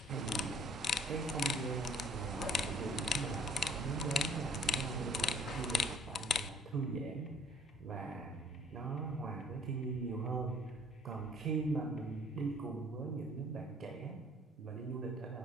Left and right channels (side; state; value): both; normal; correlation 0.56